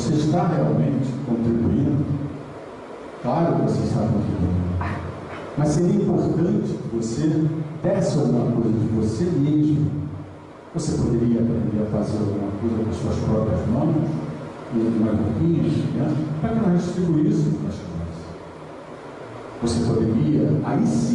está realmente contribuindo? Claro que você está contribuindo. Mas seria importante que você desse alguma coisa de você mesmo. Você poderia aprender a fazer alguma coisa com as suas próprias mãos, e umas roupinhas, né? Para que nós distribuíssemos para as crianças. Você poderia,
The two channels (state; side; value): identical; both; correlation 1.00